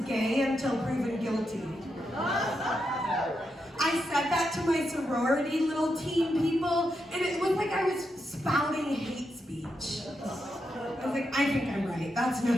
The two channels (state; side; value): normal; both; correlation 0.84